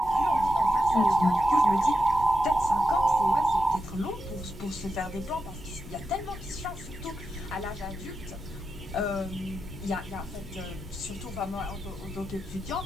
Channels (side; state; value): left; noise; rumble, 17 dB below the sound